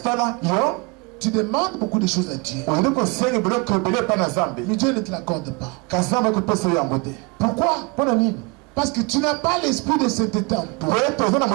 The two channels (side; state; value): left; quieter; 29.4 dB